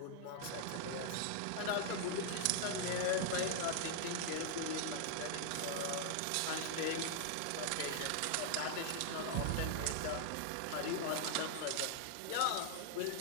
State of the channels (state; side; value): different; both; correlation 0.00